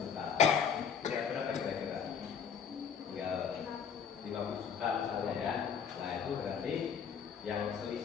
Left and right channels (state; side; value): quieter; right; 7.0 dB